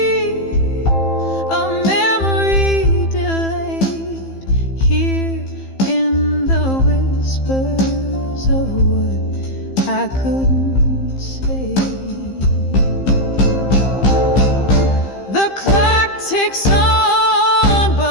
a memory delayed, here in the whispers of what I couldn't say. The clock ticks on,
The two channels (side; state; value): right; late; 15 ms